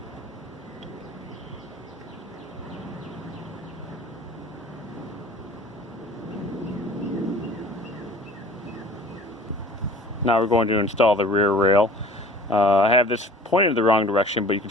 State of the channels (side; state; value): both; normal; correlation 0.46